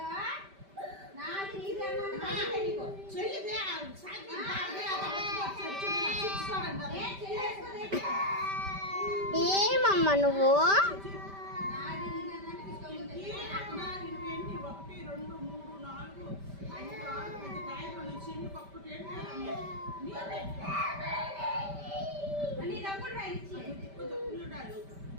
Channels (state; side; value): late; left; 5.1 ms